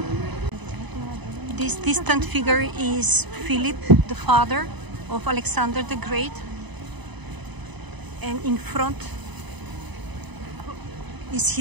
This distant figure is Philip, the father of Alexander the Great. And in front is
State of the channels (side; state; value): left; late; 1.0 ms